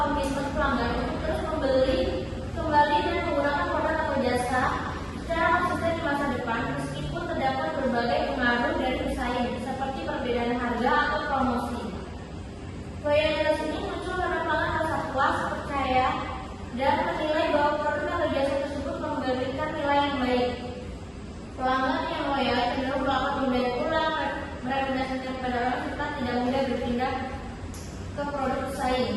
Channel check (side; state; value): both; identical; correlation 1.00